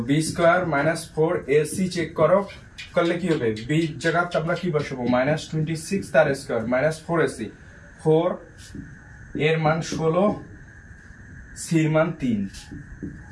b square minus 4ac check করো, করলে কি হবে, b জায়গায় আমরা কি বসাবো, মাইনাস 26 তার স্কয়ার মাইনাস 4ac, 4 এর মান 16, c এর মান 3,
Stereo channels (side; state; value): both; identical; correlation 1.00